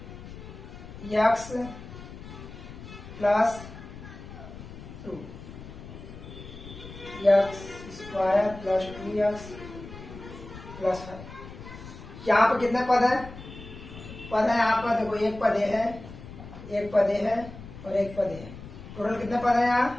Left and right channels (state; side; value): noise; left; rumble, 14 dB below the sound